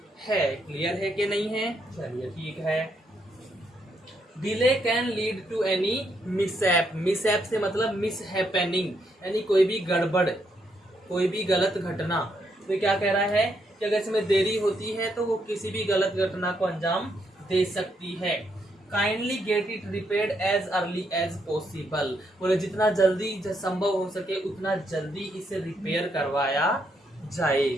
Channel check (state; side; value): normal; both; correlation 0.76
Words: है। क्लियर है कि नहीं है? चलिए ठीक है। Delay can lead to any mishap, mishap से मतलब मिसहैपनिंग, यानी कोई भी गड़बड़, कोई भी गलत घटना। तो क्या कह रहा है कि अगर इसमें देरी होती है तो वो किसी भी गलत घटना को अंजाम दे सकती है। Kindly get it repaired as early as possible, बोले जितना जल्दी संभव हो सके उतना जल्दी इसे रिपेयर करवाया जाए।